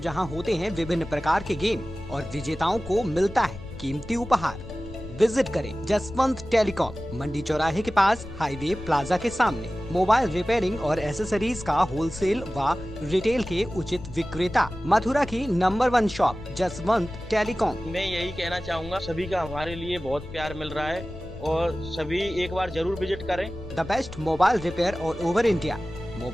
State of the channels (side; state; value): left; noise; rumble, 13 dB below the sound